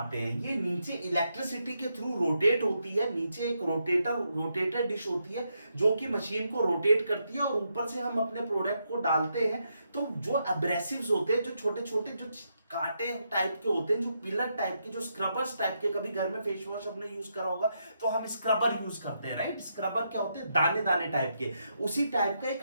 हैं। ये नीचे इलेक्ट्रिसिटी के थ्रू रोटेट होती है, नीचे एक रोटेटर डिश होती है जो कि मशीन को रोटेट करती है, और ऊपर से हम अपने प्रोडक्ट को डालते हैं। तो जो एब्रेसिव्स होते हैं, जो छोटे छोटे जो कांटे टाइप के होते हैं, जो पिलर टाइप के, जो स्क्रबर्स टाइप के, कभी घर में फेस वॉश अपने यूज करा होगा तो हम स्क्रबर यूज करते हैं, राइट। स्क्रबर क्या होते हैं, दाने दाने टाइप के, उसी टाइप का एक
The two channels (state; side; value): inverted; both; correlation -0.81